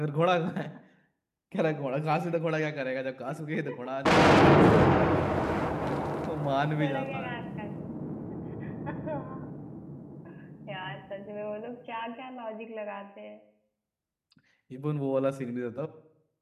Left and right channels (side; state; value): both; identical; correlation 1.00